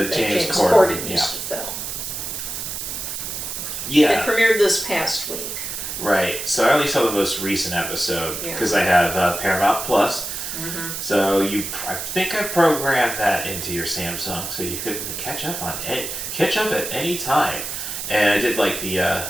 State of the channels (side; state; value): right; noise; hiss, 5 dB below the sound